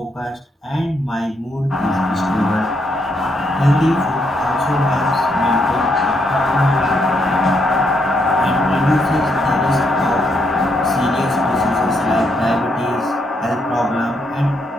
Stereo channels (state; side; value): normal; both; correlation 0.76